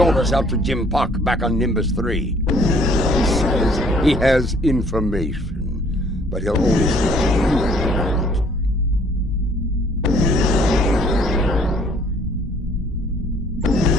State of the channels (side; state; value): both; normal; correlation 0.59